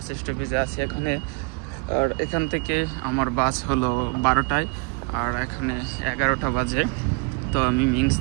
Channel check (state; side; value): quieter; left; 29.4 dB